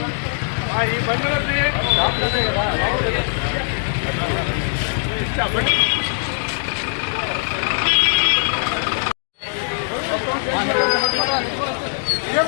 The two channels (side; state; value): right; silent; 62 dB below the other